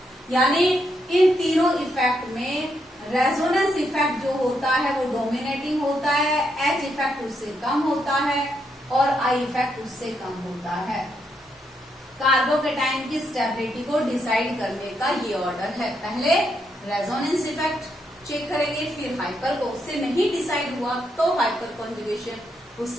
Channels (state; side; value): normal; both; correlation 0.79